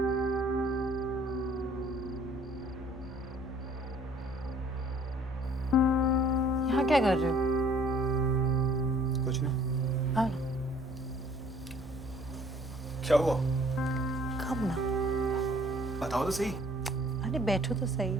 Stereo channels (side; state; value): both; normal; correlation 0.56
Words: यहाँ क्या कर रहे हो? कुछ नहीं। हाँ, क्या हुआ? कब ना। बताओ तो सही। अरे बैठो तो सही,